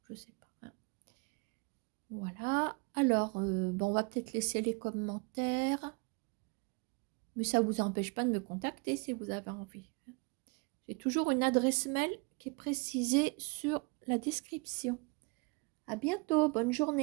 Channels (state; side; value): quieter; left; 30.5 dB